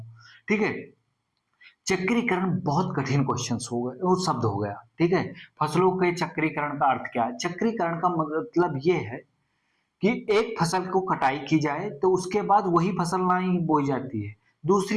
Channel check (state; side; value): identical; both; correlation 1.00